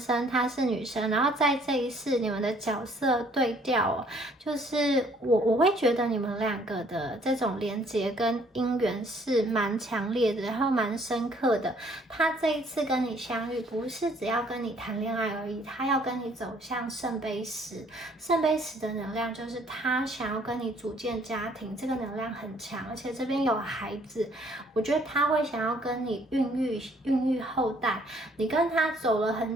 他是女生，然后在这一世你们的角色对调哦，就是我会觉得你们2个的这种连结跟姻缘是蛮强烈的，然后蛮深刻的。他这一次跟你相遇，不是只要跟你谈恋爱而已，他要跟你走向圣杯十。圣杯十的能量就是他想要跟你组建家庭，这个能量很强，而且这边有孩子，我觉得他会想要跟你孕育后代。你跟他走了很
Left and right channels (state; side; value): normal; both; correlation 0.61